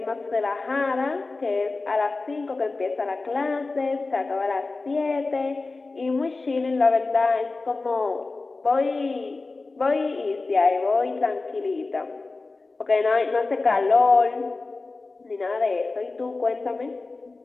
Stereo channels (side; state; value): right; quieter; 3.6 dB